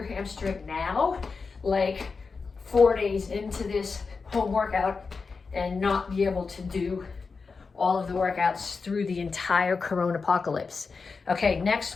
hamstring now, like 4 days into this home workout, and not be able to do all of the workouts through the entire corona apocalypse. Okay, next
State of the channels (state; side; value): quieter; right; 4.7 dB